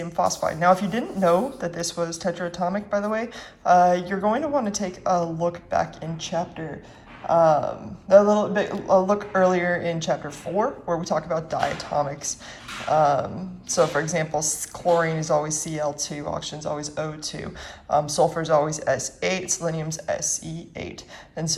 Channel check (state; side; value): identical; both; correlation 1.00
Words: phosphide. Now, if you didn't know that this was tetraatomic, by the way, you're going to want to take a look back in chapter, a look earlier in chapter 4, where we talk about diatomics. So, for example, chlorine is always Cl2, oxygen is always O2, sulfur is always S8, selenium's Se8, and